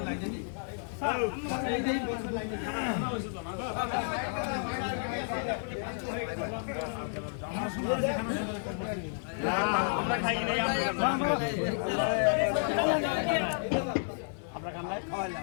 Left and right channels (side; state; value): right; silent; digital silence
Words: আমরা খাই নাই আমরা খান নাই